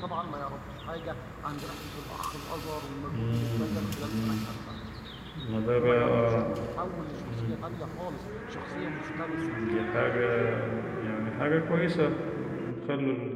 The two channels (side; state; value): both; identical; correlation 1.00